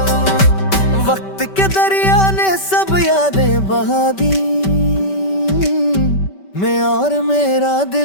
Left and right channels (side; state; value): right; late; 5.2 ms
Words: वक्त के दरिया ने सब यादें बहा दी, मैं और मेरा